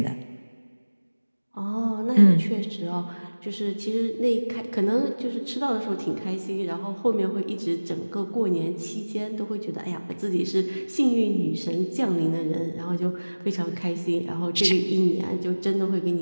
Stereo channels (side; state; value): both; inverted; correlation -1.00